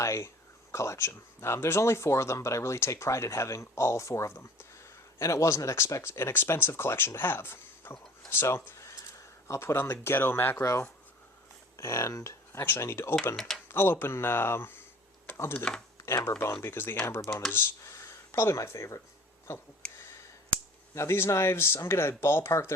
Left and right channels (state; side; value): normal; both; correlation 0.46